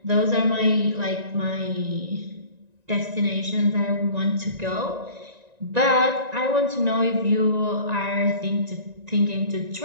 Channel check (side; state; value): left; late; 1.9 ms